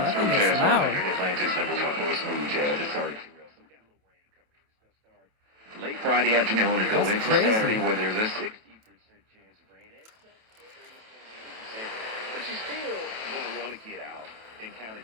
Smooth Jazz 100, Atlanta's #1 for smooth jazz. It started late Friday afternoon and go into Saturday where there's a 60% chance of rain. But you still going to want to get out and kind of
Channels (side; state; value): left; late; 28 ms